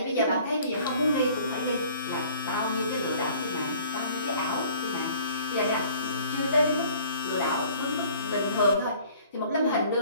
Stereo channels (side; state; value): both; inverted; correlation -0.53